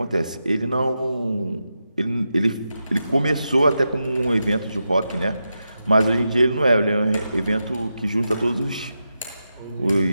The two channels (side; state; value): both; inverted; correlation -0.88